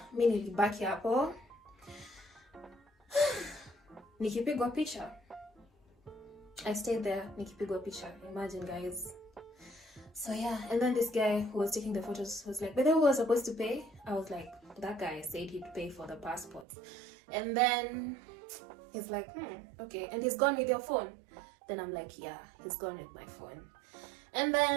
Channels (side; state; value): left; drops out; at 16.7 s